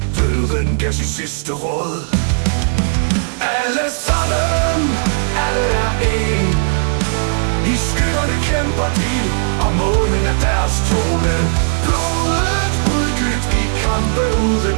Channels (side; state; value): left; silent; digital silence